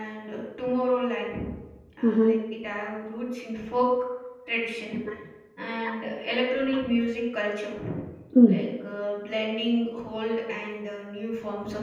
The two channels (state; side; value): identical; both; correlation 1.00